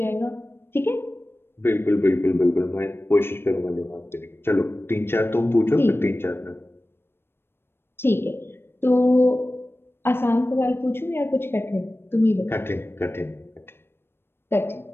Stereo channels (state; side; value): late; right; 0.11 ms